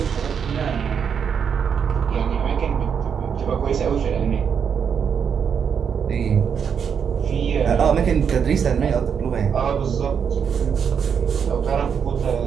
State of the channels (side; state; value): left; quieter; 7.2 dB